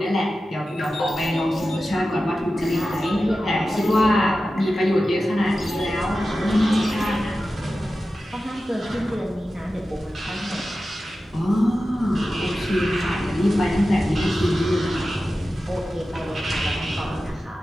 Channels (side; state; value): both; normal; correlation 0.93